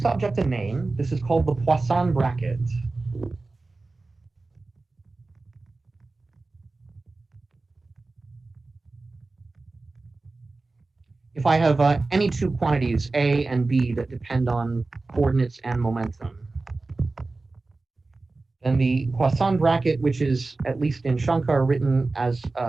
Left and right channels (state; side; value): quieter; left; 3.4 dB